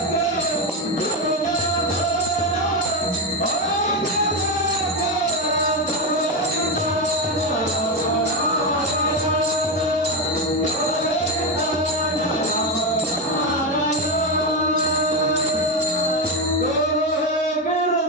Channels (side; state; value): both; normal; correlation 0.10